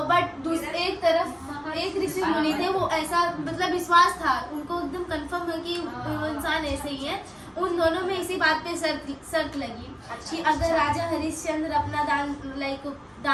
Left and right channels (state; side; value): identical; both; correlation 1.00